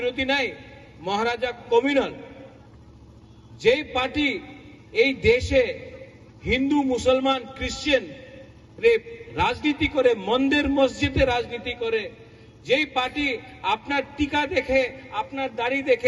নাই, মহারাজা কমিউনাল। যেই পার্টি এই দেশে হিন্দু মুসলমান খ্রিস্টান রে রাজনীতি করে, মন্দির মসজিদে রাজনীতি করে, যেই পার্টি আপনার টিকা দেখে আপনার দাড়ি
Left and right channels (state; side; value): identical; both; correlation 1.00